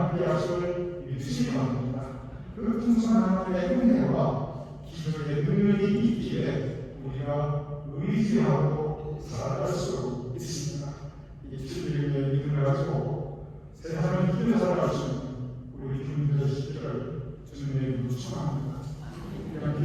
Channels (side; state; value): both; identical; correlation 1.00